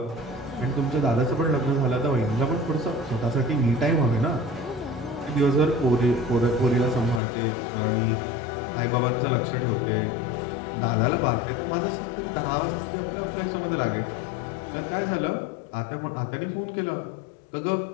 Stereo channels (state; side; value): drops out; right; at 7.2 s